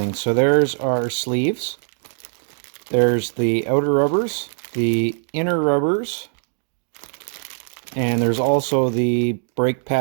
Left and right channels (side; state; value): left; silent; 65 dB below the other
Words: So there's our sleeves. There's the outer rubbers, the inner rubbers, and there's also the brake